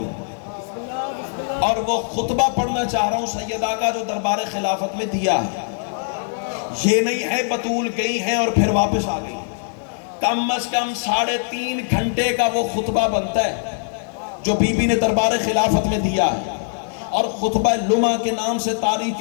اور وہ خطبہ پڑھنا چاہ رہا ہوں سیدہ کا جو دربار خلافت میں دیا ہے. یہ نہیں ہے بطول گئی ہیں اور پھر واپس آ گئی. کم از کم 3.5 گھنٹے کا وہ خطبہ بنتا ہے جو بی بی نے دربار خلافت میں دیا ہے، اور خطبہ لمعہ کے نام سے تاریخ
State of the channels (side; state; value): right; silent; digital silence